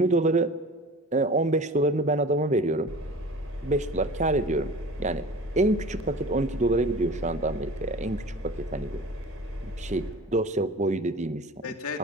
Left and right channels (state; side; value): normal; both; correlation 0.40